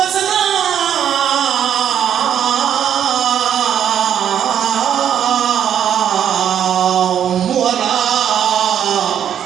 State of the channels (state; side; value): quieter; left; 9.3 dB